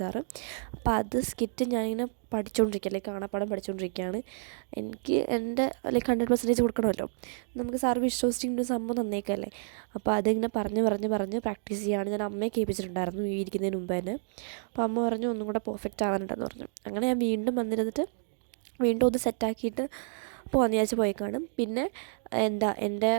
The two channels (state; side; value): silent; left; digital silence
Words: അപ്പോൾ അത് സ്കിറ്റ് ഞാനിങ്ങനെ പഠിച്ചുകൊണ്ടിരിക്കുക, കാണാപ്പാടം പഠിച്ചുകൊണ്ടിരിക്കുകയാണ്. എനിക്ക് എൻ്റെ 100% കൊടുക്കണമല്ലോ, നമുക്ക് സാറ് വിശ്വസിച്ചിട്ട് സംഭവം തന്നേക്കല്ലേ. അപ്പോൾ അതിങ്ങനെ പറഞ്ഞ് പ്രാക്ടീസ് ചെയ്യുകയാണ്. ഞാൻ അമ്മയെ കേൾപ്പിച്ചിട്ടുണ്ടായിരുന്നു ഈ ഇരിക്കുന്നതിന് മുമ്പ് തന്നെ. അപ്പോൾ അമ്മ പറഞ്ഞു ഒന്നും കൂടെ പെർഫെക്റ്റ് ആവാനുണ്ടെന്ന് പറഞ്ഞു. അങ്ങനെ ഞാൻ വീണ്ടും വന്നിരുന്നിട്ട് വീണ്ടും ഒന്ന് സെറ്റാക്കിയിട്ട് പോകാമെന്ന് വിചാരിച്ച് പോയി കാണും. പിന്നെ എൻ്റെ